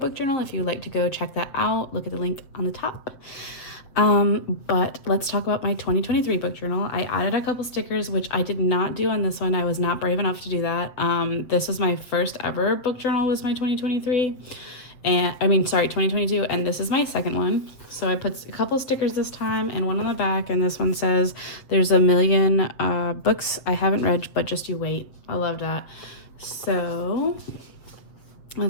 journal. If you'd like to go check that out, look at the link on the top. But let's talk about my 2023 book journal. I added a couple stickers, which I did not do on this one. I was not brave enough to do that. This was my first ever book journal, was my 2023. And 2022, and this is my second one. So I put a couple stickers this time and one on the back, and this one says there's a million books I haven't read, but just you wait. I love that. So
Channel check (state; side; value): late; right; 7.6 ms